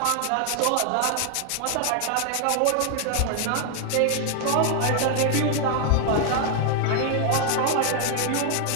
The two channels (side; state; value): both; different; correlation 0.00